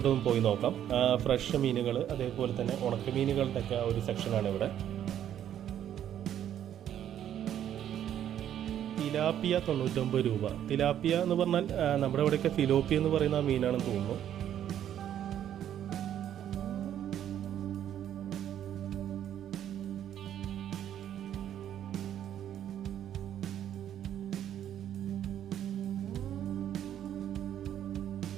പോയി നോക്കാം. ഫ്രഷ് മീനുകൾ, അതേപോലെ തന്നെ ഉണക്കമീനുകളുടെ ഒക്കെ ഒരു സെക്ഷനാണ് ഇവിടെ. തിലാപ്പിയ 99 രൂപ. തിലാപ്പിയ എന്ന് പറഞ്ഞാൽ നമ്മുടെ ഇവിടെയൊക്കെ ഫിലോപ്പിയ എന്ന് പറയുന്ന മീനാണെന്ന് തോന്നുന്നു.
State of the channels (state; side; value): quieter; left; 10.5 dB